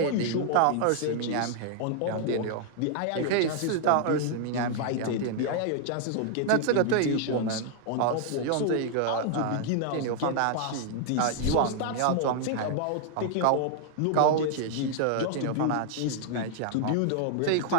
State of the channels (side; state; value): both; different; correlation 0.00